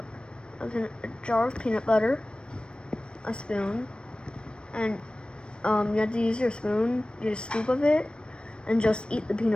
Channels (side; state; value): right; late; 0.055 ms